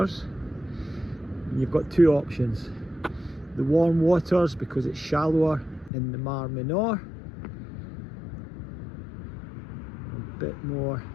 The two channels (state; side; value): drops out; right; at 5.9 s